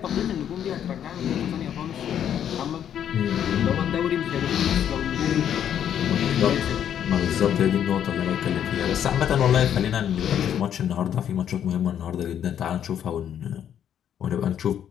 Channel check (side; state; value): right; quieter; 9.6 dB